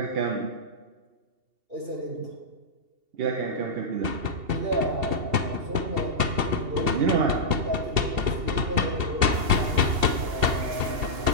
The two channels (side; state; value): left; late; 2.7 ms